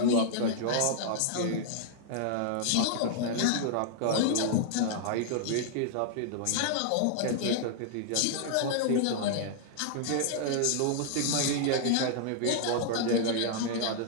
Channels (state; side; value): different; both; correlation -0.01